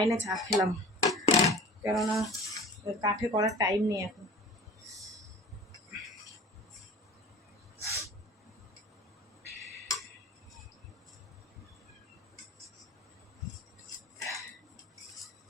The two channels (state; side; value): normal; both; correlation 0.42